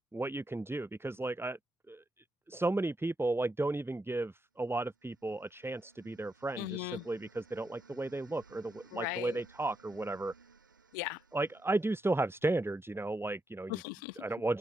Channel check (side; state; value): both; normal; correlation 0.83